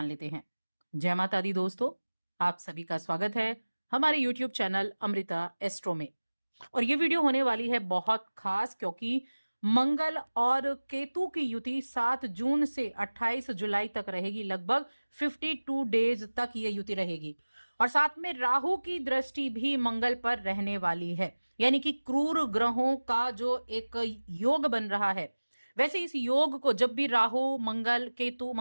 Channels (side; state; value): both; inverted; correlation -1.00